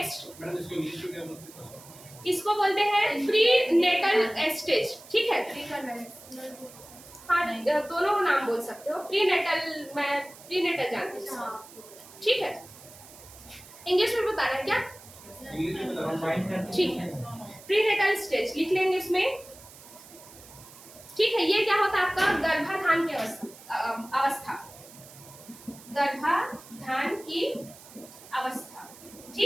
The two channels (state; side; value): noise; right; hiss, 19 dB below the sound